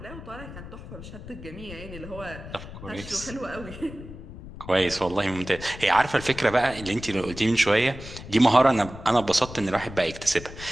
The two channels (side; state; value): left; noise; rumble, 13 dB below the sound